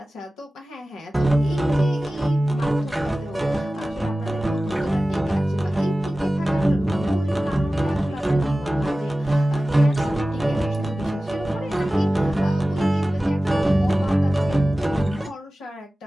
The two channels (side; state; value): both; normal; correlation 0.96